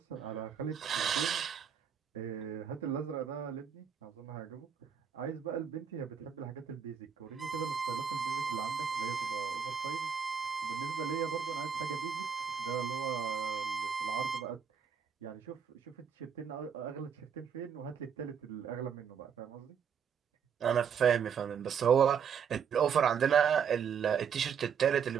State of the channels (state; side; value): quieter; left; 7.2 dB